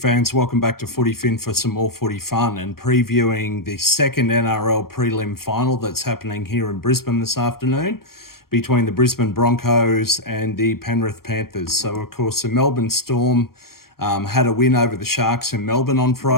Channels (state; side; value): late; right; 0.93 ms